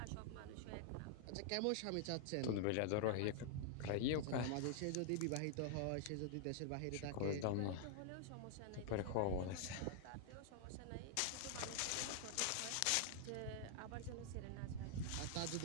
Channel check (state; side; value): different; both; correlation -0.01